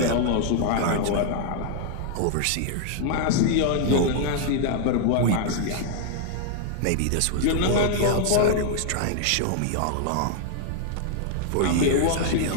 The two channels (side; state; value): both; different; correlation 0.00